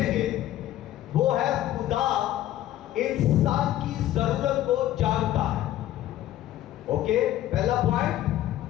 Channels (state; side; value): quieter; right; 13.6 dB